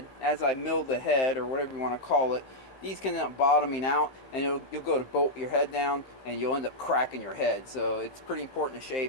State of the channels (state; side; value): late; right; 15 ms